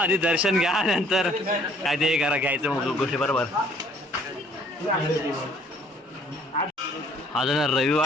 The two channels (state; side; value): normal; both; correlation 0.60